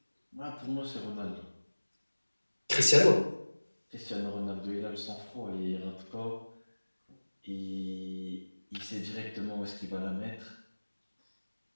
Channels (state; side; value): inverted; both; correlation -1.00